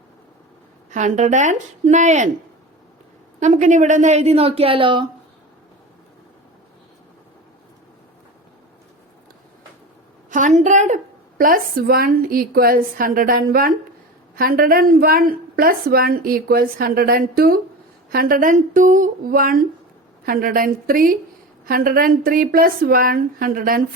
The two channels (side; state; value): both; normal; correlation 0.30